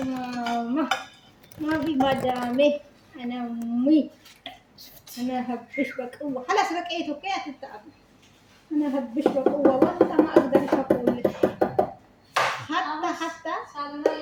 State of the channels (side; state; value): both; identical; correlation 1.00